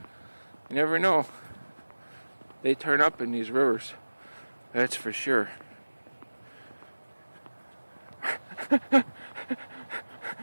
You never know. They turn up in these rivers. That's for sure.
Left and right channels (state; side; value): inverted; both; correlation -1.00